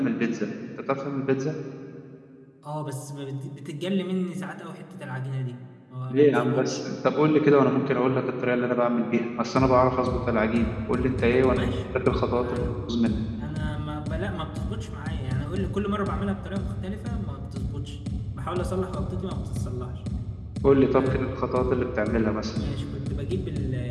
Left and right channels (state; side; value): identical; both; correlation 1.00